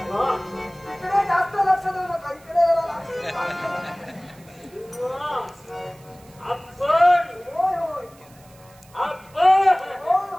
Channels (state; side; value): noise; right; hiss, 27 dB below the sound